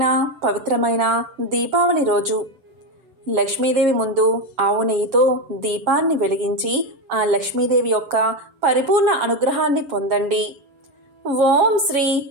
పవిత్రమైన దీపావళి రోజు లక్ష్మీదేవి ముందు ఆవు నెయ్యితో దీపాన్ని వెలిగించి ఆ లక్ష్మీదేవి యొక్క పరిపూర్ణ అనుగ్రహాన్ని పొందండి. ఓం శ్రీ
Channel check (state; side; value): late; left; 7.5 ms